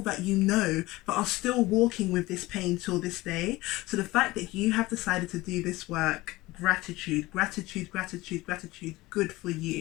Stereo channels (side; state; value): right; quieter; 19.6 dB